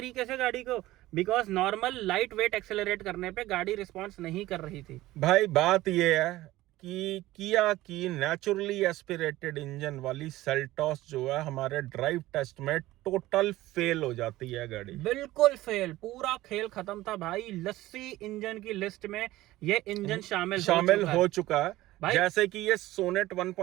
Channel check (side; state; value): left; quieter; 16.9 dB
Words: से गाड़ी को, because normal light weight accelerate करने पे गाड़ी रिस्पॉन्स नहीं कर रही थी। भाई बात ये है कि किया की नेचुरली एस्पिरेटेड इंजन वाली सेल्टॉस जो है हमारे ड्राइव टेस्ट में टोटल फेल हो जाती है गाड़ी। बिल्कुल फेल, पूरा खेल खत्म था भाई। लस्सी इंजन की लिस्ट में ये इंजन शामिल हो चुका है। भाई जैसे कि ये सोनेट